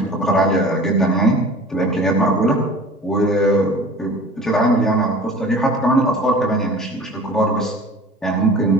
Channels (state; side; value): normal; both; correlation 0.42